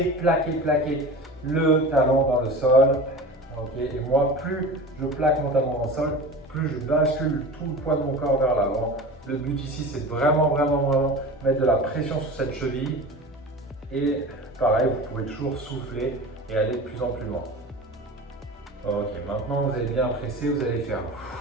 le talon dans le sol. Okay. Et moi, plus je plaque mon talon dans le sol, plus je bascule tout le poids de mon corps vers l'avant. Le but ici, c'est de vraiment mettre de la pression sur cette cheville. Et pareil, vous pouvez toujours souffler et aller de plus en plus loin. Ok, maintenant vous avez bien pressé, vous allez faire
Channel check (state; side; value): normal; both; correlation 0.34